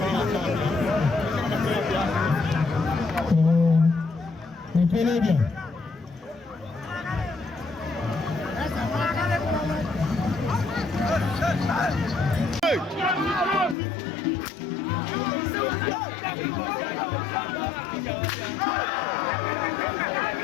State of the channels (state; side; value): drops out; right; at 13.8 s